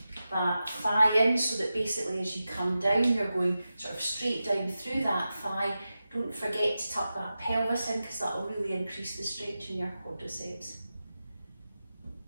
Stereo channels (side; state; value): both; inverted; correlation -0.93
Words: that thigh in, so that basically as you come down, you're going sort of straight down through that thigh. Don't forget to tuck that pelvis in, because that will really increase the stretch in your quadriceps.